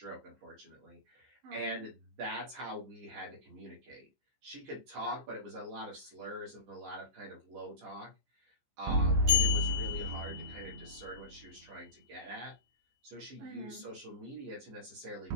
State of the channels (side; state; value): left; late; 15 ms